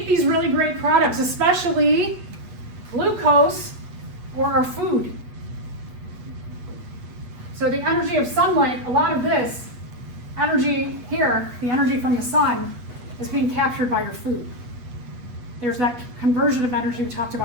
these really great products, especially glucose or our food. So the energy of sunlight, a lot of this energy here, the energy from the sun, is being captured by your food. There's that conversion of energy we talked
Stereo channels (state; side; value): late; left; 8.2 ms